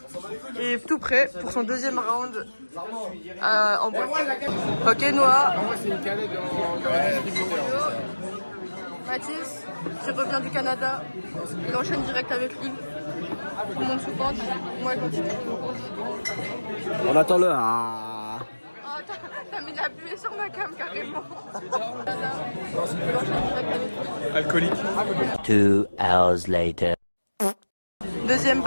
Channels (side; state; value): both; inverted; correlation -1.00